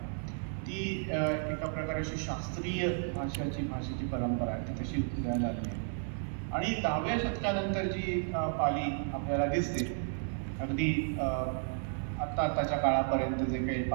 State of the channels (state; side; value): silent; left; 56 dB below the other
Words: ती एका प्रकारे अशी शास्त्रीय भाषेची परंपरा आहे, ती तशी उदयाला आली आहे. आणि 10व्या शतकानंतर जी पाली आपल्याला दिसते, अगदी आत्ताच्या काळापर्यंत जे काही